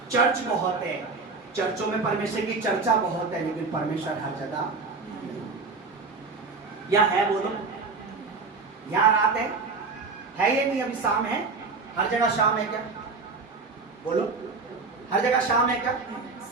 चर्च बहुत है, चर्चों में परमेश्वर की चर्चा बहुत है, लेकिन परमेश्वर हर जगह या है। बोलो, यहाँ रात है ये नहीं? अभी शाम है, हर जगह शाम है क्या? बोलो, हर जगह शाम है क्या?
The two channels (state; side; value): quieter; left; 4.2 dB